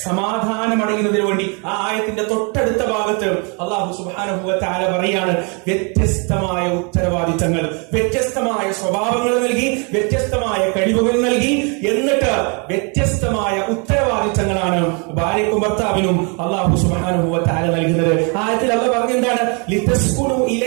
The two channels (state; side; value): quieter; left; 34.6 dB